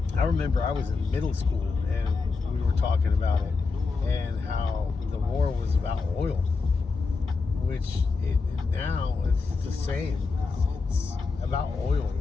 I remember I was in middle school and we were talking about it and how the war was about oil, which now it's the same. It's about oil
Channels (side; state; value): right; quieter; 4.4 dB